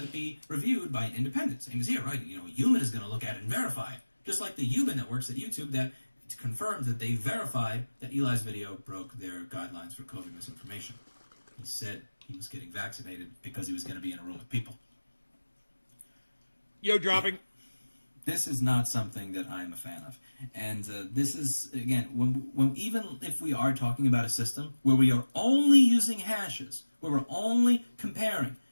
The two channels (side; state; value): both; inverted; correlation -1.00